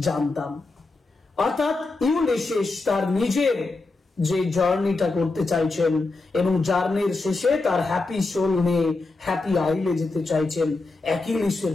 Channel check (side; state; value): right; quieter; 3.5 dB